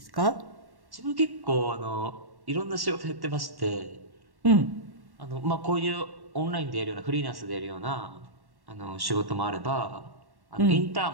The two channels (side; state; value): left; late; 1.1 ms